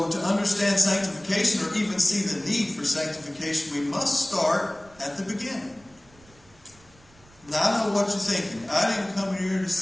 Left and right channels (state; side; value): noise; right; rumble, 27 dB below the sound